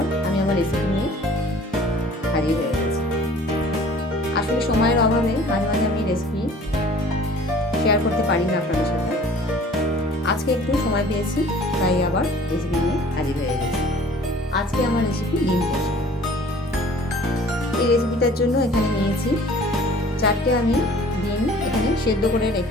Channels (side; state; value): both; normal; correlation 0.50